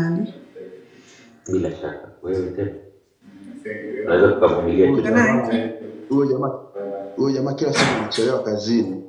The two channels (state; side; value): identical; both; correlation 1.00